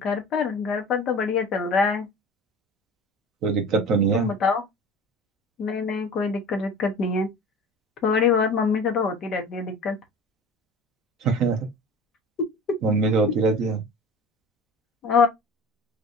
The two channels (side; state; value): both; normal; correlation 0.39